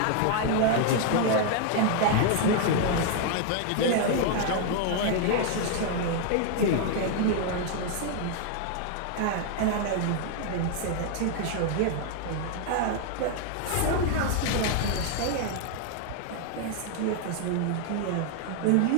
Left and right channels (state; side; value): different; both; correlation 0.00